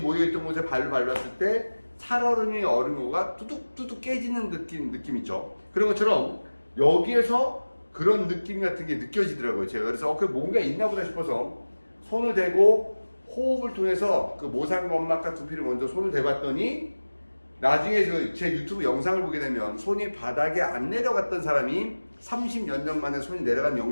곳에 발을 밟았을 때 살얼음이 얼음우가 뚜둑뚜둑 깨지는 느낌 있죠. 그런 것처럼 여기에서 그런 느낌 같은 게 느껴지더라고요. 제가 그래서 그 뭔가 있나 보다 싶어서 손을 대고 호흡을 통해서 그 모상건막과 두피를 먼저 손을 대봤더니 나중에 제 유튜브 영상을 보게 되면 손이 바닥에 안 내려갔던 사람이 30몇 년 만에 손이 내려간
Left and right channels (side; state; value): both; inverted; correlation -1.00